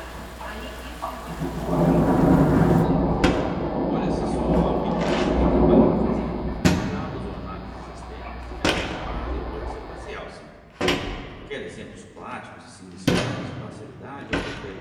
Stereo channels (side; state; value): both; identical; correlation 1.00